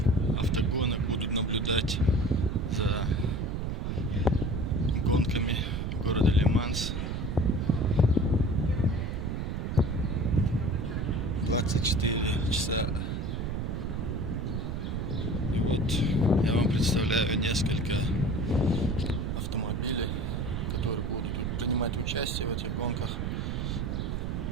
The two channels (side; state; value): right; noise; rumble, 2 dB below the sound